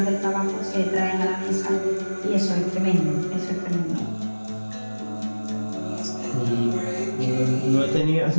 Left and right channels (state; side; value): inverted; both; correlation -1.00